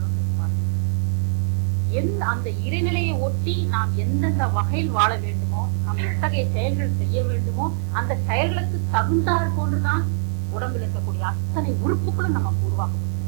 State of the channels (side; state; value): left; silent; 55 dB below the other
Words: அந்த இறைநிலையை ஒட்டி நாம் எந்தெந்த வகையில் வாழ வேண்டுமோ, நாம் எத்தகைய செயல்கள் செய்ய வேண்டுமோ, அந்த செயல்களுக்கு தகுந்தாற் போன்றுதான் உடம்பில் இருக்கக்கூடிய அத்தனை உறுப்புகளும் நமக்கு உருவாக்கப்படும்.